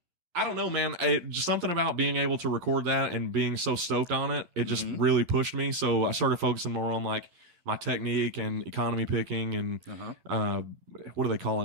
I don't know, man. Just something about being able to record that and being so stoked on it, it just really pushed me. So I started focusing more on like my technique and economy picking and what do they call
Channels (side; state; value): left; late; 11 ms